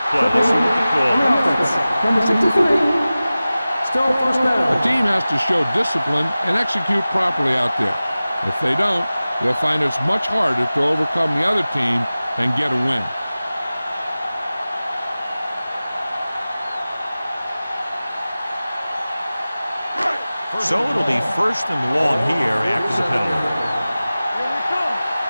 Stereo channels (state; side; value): inverted; both; correlation -0.97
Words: play. Let's see what the call is. Number 63. Still first down. The team has to show discipline and execute properly out there. If they don't, they'll find it's much harder to overcome the other team and get a win. So it'll be first and long here after the penalty.